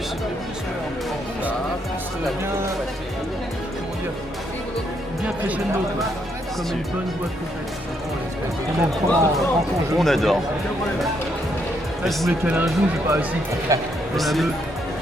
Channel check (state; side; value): normal; both; correlation 0.75